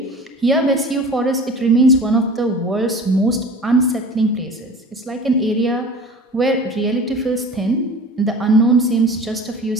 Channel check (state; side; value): normal; both; correlation 0.40